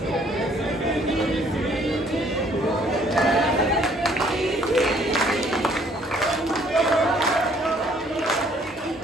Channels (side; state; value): both; normal; correlation 0.62